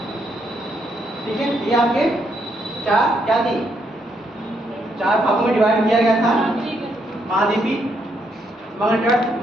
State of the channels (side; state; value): both; normal; correlation 0.76